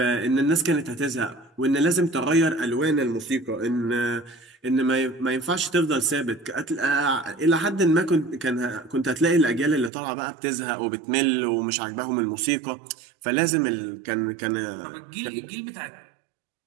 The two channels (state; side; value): drops out; left; at 9.9 s